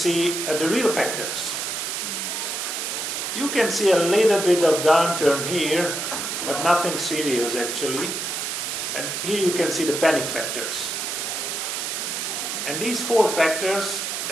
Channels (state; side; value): noise; right; hiss, 3 dB below the sound